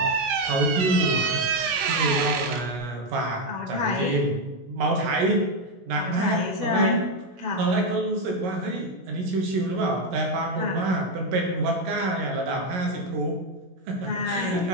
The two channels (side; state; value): left; late; 16 ms